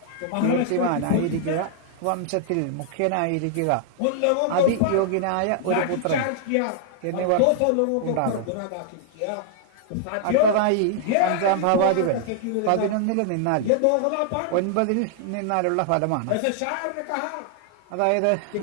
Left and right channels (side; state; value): both; different; correlation -0.01